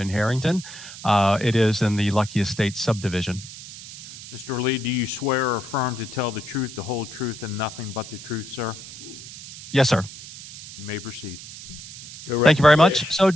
Harrington. It is in the Lucky Estates subdivision. Mr. Lee, do you swear or affirm to tell the truth, the whole truth, and nothing but the truth, sir? Yes, sir. You may proceed. Thank you very much. So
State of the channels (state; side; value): noise; right; hiss, 14 dB below the sound